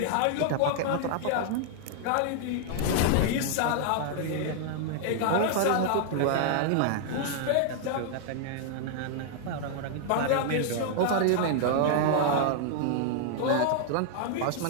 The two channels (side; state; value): both; different; correlation -0.01